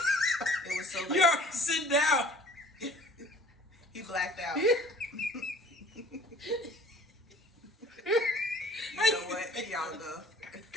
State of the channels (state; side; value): normal; both; correlation 0.51